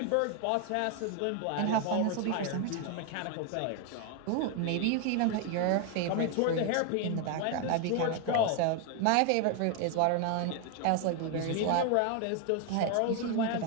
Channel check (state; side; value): different; both; correlation 0.01